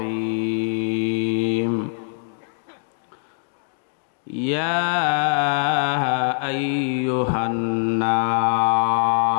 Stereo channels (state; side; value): silent; right; digital silence